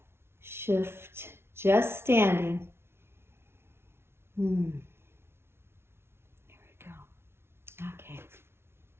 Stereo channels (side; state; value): left; late; 0.12 ms